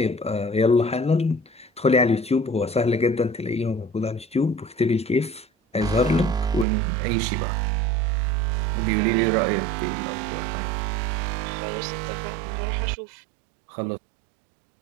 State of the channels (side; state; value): left; drops out; at 6.7 s